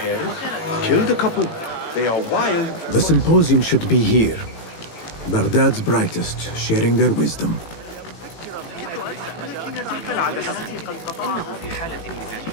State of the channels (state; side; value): late; right; 18 ms